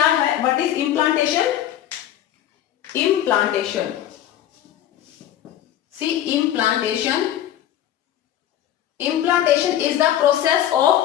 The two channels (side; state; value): right; quieter; 11.7 dB